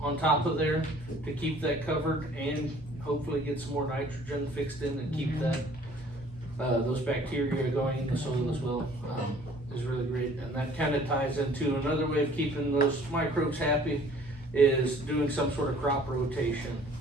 on top of there to keep that covered and hopefully get some more nitrogen fixed in and keep that those bacteria going in the soil as well, is really great. And that kind of ties into another way of keeping those microbes happy is doing some sort of crop rotation,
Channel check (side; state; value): both; normal; correlation 0.54